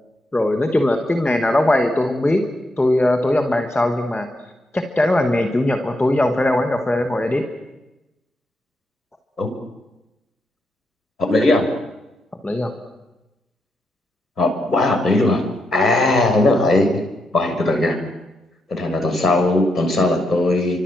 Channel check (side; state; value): both; normal; correlation 0.82